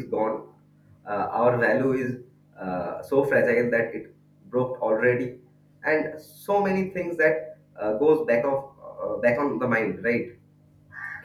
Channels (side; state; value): both; identical; correlation 1.00